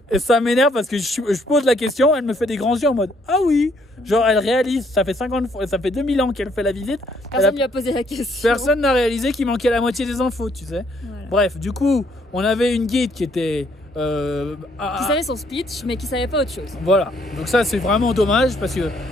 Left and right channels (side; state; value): both; normal; correlation 0.68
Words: et ça m'énerve parce que je pose la question, elle me fait des grands yeux en mode, ah oui, genre elle réalise, ça fait 2000 ans qu'elle fait la visite. Personne lui a posé la question. Personne n'a réalisé qu'il manquait la moitié des infos, tu sais. Voilà. Bref, du coup, on avait une guide qui était... qui savait son speech, mais qui savait pas autre chose. Voilà, donc ça c'est vraiment dommage parce que